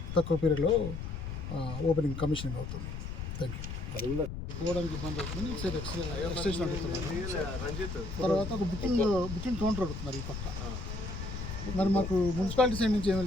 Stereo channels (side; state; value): left; noise; rumble, 6 dB below the sound